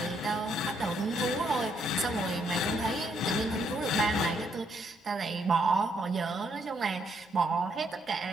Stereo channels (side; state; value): both; normal; correlation 0.73